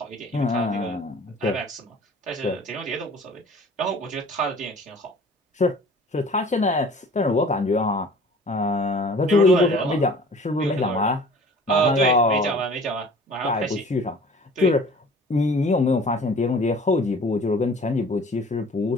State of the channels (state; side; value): normal; both; correlation 0.47